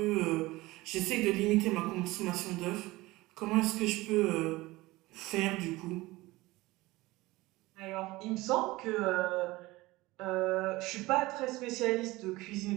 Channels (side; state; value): left; quieter; 20.0 dB